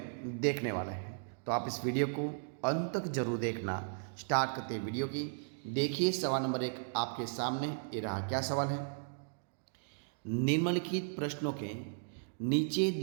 देखने वाले हैं। तो आप इस वीडियो को अंत तक जरूर देखना। स्टार्ट करते हैं वीडियो की। देखिए सवाल नंबर 1 आपके सामने ये रहा। क्या सवाल है? निम्नलिखित प्रश्नों के नीचे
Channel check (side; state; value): left; silent; digital silence